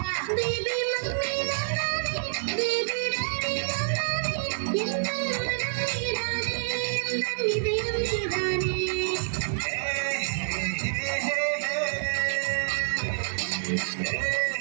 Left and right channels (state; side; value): silent; left; 60 dB below the other